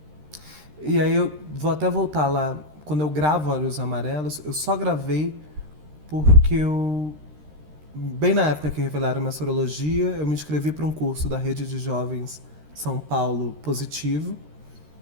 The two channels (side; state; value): left; late; 13 ms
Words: e aí eu vou até voltar lá. Quando eu gravo Olhos Amarelos, eu só gravei porque eu. Bem na época que revelaram minha sorologia, eu me inscrevi para um curso da Rede de Jovens São Paulo Positivo,